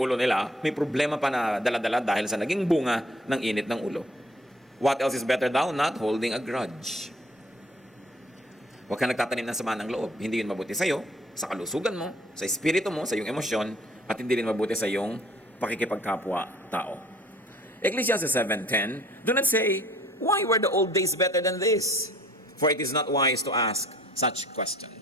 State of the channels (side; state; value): both; normal; correlation 0.56